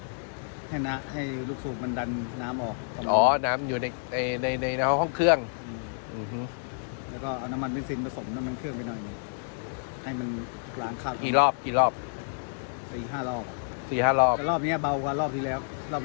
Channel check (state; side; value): silent; right; digital silence